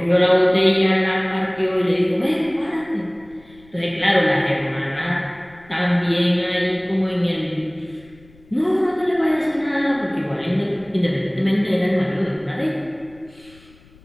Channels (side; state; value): left; noise; rumble, 27 dB below the sound